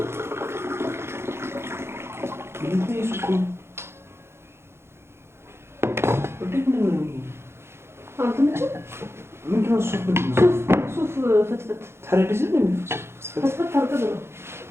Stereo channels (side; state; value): left; late; 0.12 ms